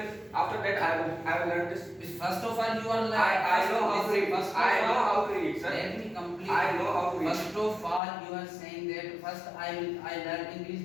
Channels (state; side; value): drops out; right; at 8.0 s